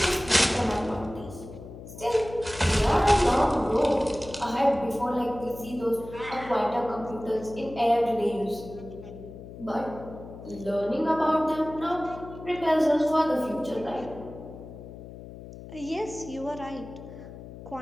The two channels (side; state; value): left; noise; hum, 14 dB below the sound